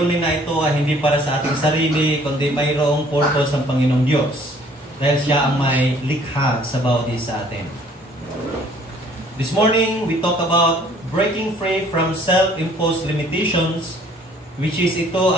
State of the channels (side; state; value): both; normal; correlation 0.57